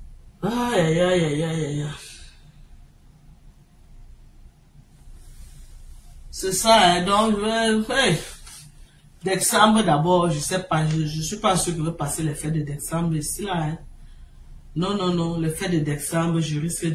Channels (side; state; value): both; identical; correlation 1.00